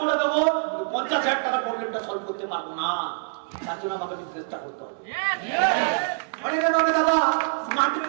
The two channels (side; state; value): left; silent; digital silence